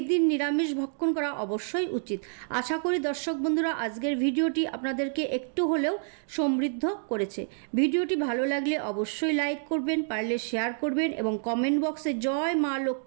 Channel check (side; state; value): left; silent; digital silence